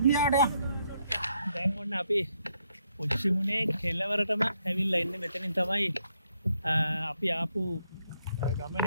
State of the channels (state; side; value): inverted; both; correlation -0.76